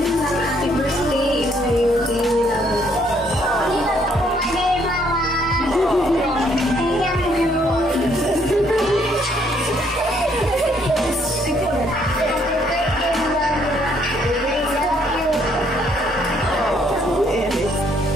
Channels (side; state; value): both; normal; correlation 0.68